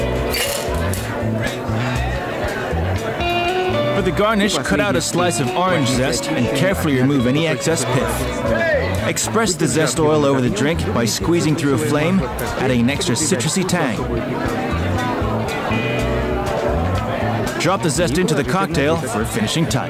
For the garnish, cut out a slice of orange zest and carefully remove any excess pith. Express the zest oil over the drink by squeezing through a flame, adding an extra citrusy tang. Drop the zest into the cocktail for a finishing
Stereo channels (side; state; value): both; identical; correlation 1.00